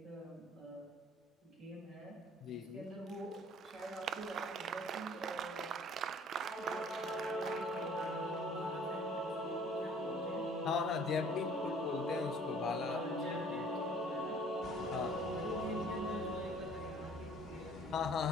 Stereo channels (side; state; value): both; normal; correlation 0.54